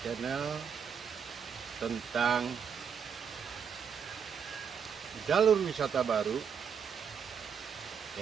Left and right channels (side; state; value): left; quieter; 7.1 dB